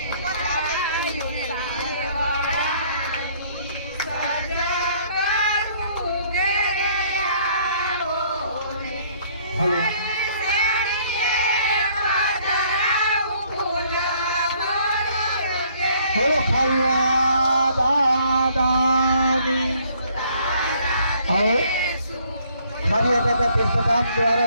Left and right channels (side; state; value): both; inverted; correlation -0.62